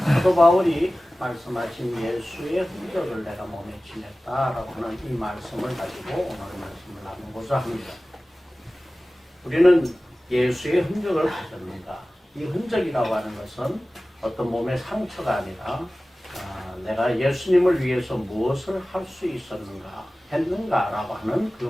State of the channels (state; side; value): normal; both; correlation 0.97